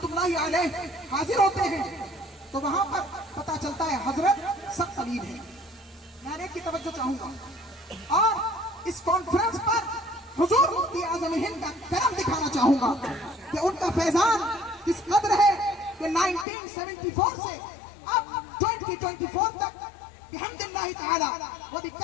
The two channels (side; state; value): right; drops out; at 16.4 s